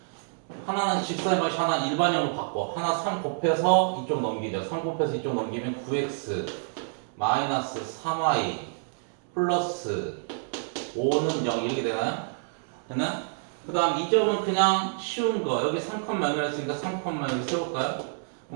하나는 직선의 방식 하나 일반형으로 바꿔. 하나 3 곱해서 이쪽 넘기죠. 3 곱해서 이쪽 넘기면 9x 마이너스 3y 플러스 5는 0 이렇게 되나요? 됐나요? 그 다음 이 점은 그냥 쉬운 거. 여기 3,0이었으니까 3,0을 세울까요?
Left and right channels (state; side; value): silent; left; digital silence